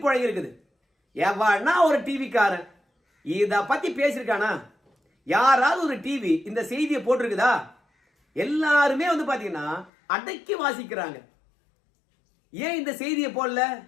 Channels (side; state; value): right; drops out; at 9.9 s